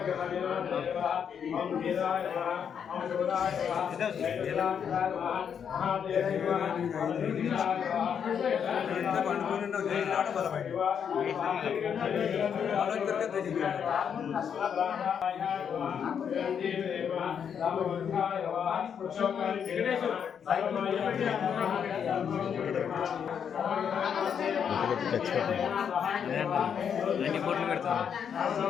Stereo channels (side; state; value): right; quieter; 7.7 dB